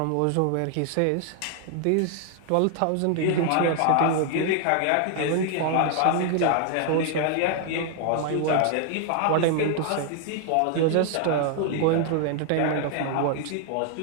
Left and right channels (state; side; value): different; both; correlation 0.00